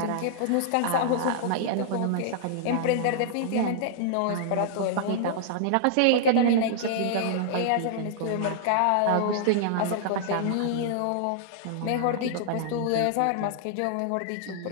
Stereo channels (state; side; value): different; both; correlation -0.01